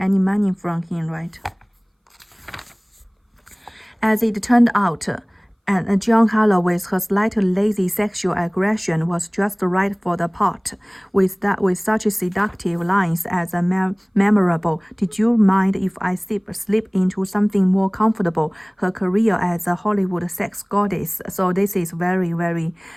money from him, right? As it turned out, and John Harlow, with her slightly lazy sexual aggression, was just right for the part. With such seductive lines as memorable, did you mind if I slip into something more comfortable? Her career as a Hollywood sex goddess. So this is very, very,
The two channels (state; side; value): identical; both; correlation 1.00